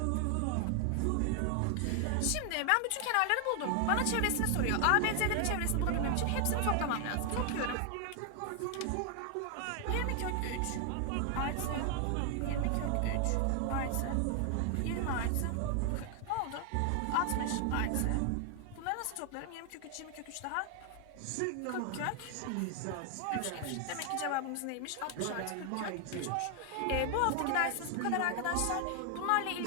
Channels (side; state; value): both; different; correlation 0.00